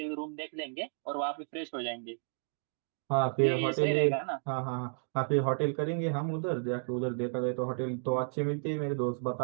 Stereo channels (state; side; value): silent; left; digital silence